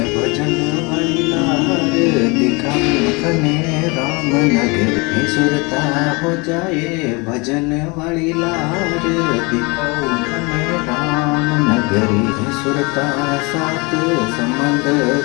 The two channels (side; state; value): right; quieter; 27.9 dB